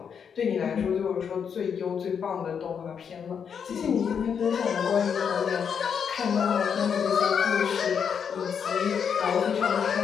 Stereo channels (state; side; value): quieter; right; 7.1 dB